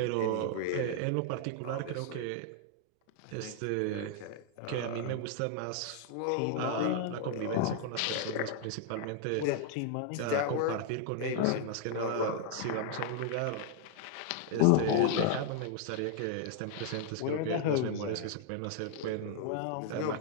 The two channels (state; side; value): different; both; correlation 0.00